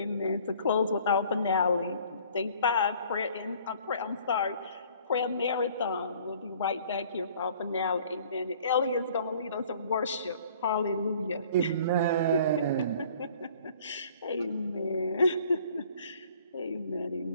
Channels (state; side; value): inverted; both; correlation -0.54